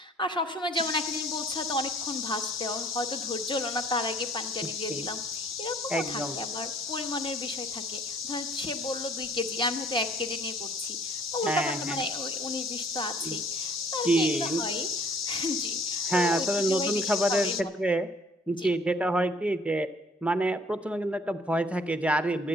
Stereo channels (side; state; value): both; normal; correlation 0.57